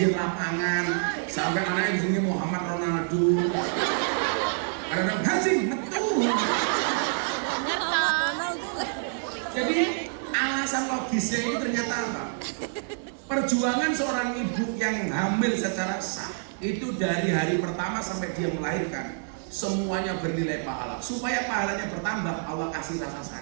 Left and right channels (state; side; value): silent; left; digital silence